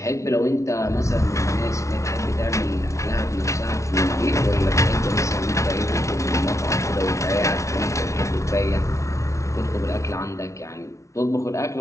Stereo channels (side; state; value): right; late; 0.14 ms